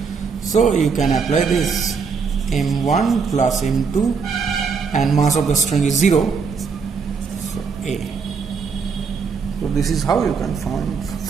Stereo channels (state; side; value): quieter; left; 5.5 dB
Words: So you can apply this M1 plus M2, and mass of the string is 0. So A. So this is how you can